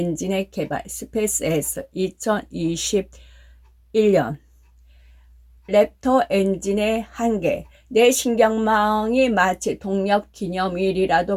개발 스페이스 X 2021년 랩터 엔진의 한계. 내 신경망이 마치 동력 기념일이라도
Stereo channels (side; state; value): both; identical; correlation 1.00